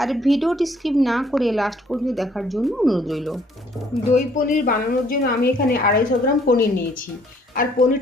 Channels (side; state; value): both; normal; correlation 0.62